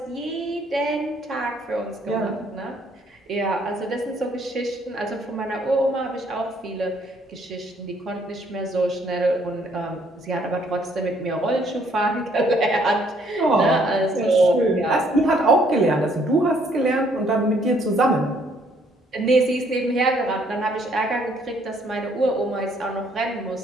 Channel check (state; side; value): normal; both; correlation 0.66